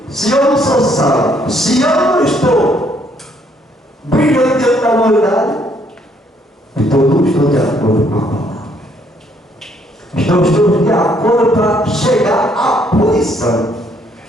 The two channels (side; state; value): both; normal; correlation 0.68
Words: se eu não sou sal, se eu não estou brilhando diante da humanidade, então não estou de acordo com a palavra. Então estamos de acordo para chegar à punição.